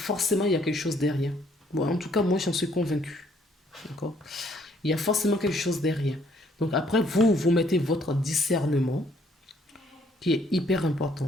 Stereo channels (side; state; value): both; normal; correlation 0.65